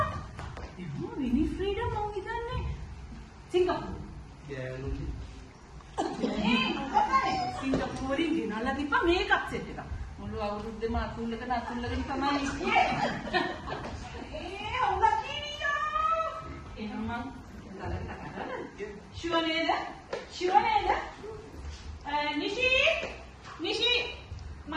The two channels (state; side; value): identical; both; correlation 1.00